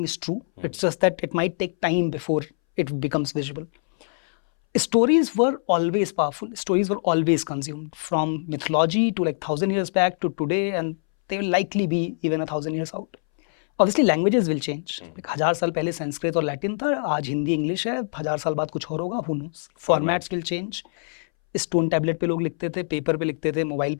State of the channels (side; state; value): right; silent; 63 dB below the other